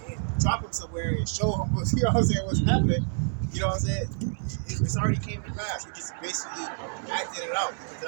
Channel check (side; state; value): left; silent; 59 dB below the other